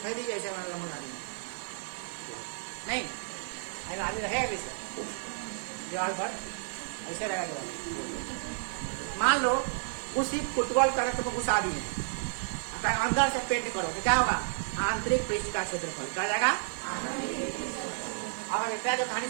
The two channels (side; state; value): left; silent; 57 dB below the other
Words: लीजिए ऐसे हमारा लंबा गाड़ी नहीं, आगे रहेगा इसे दीवार पर ऐसे रहेगा। मान लो उसी फुटबॉल करंट को घुसा दिए, अंदर से पेंट करो तो क्या होगा? आंतरिक पृष्ठ का क्षेत्रफल क्या जाएगा? अब हम इतना जो कहानी